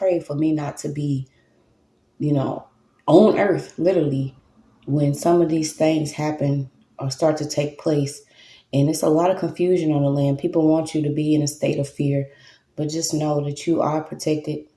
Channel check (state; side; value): identical; both; correlation 1.00